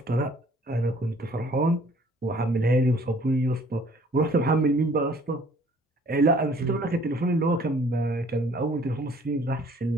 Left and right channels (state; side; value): normal; both; correlation 0.56